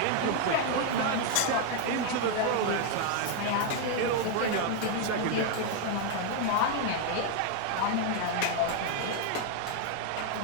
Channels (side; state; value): both; different; correlation 0.00